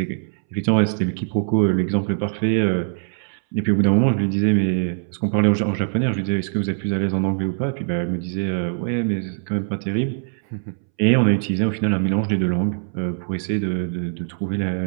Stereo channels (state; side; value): silent; left; 64 dB below the other